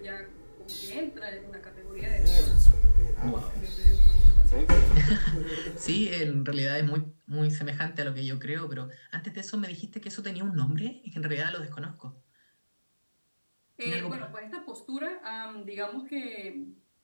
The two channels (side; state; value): both; inverted; correlation -1.00